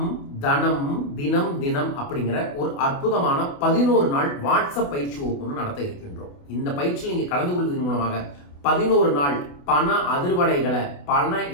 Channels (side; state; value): right; late; 28 ms